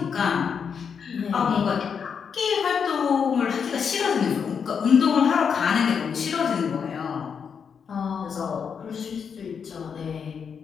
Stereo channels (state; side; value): quieter; right; 6.7 dB